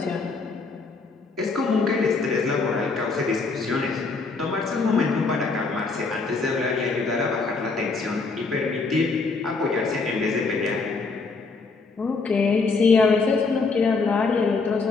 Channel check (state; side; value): quieter; right; 4.2 dB